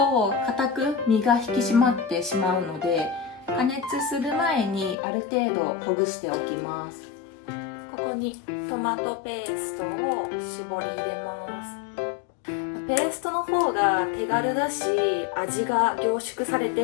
硬く身が引き締まってしまうので、加熱する前にある程度ほぐしておきます。ここにトマトペーストを絞り入れます。ペーストの方が手軽だし、味が凝縮されて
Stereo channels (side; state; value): right; drops out; at 5.0 s